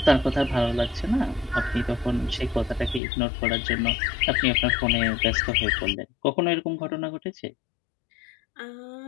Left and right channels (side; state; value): right; drops out; at 3.0 s